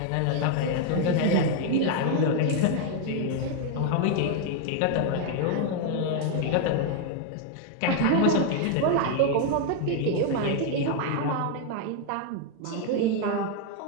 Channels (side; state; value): both; different; correlation 0.00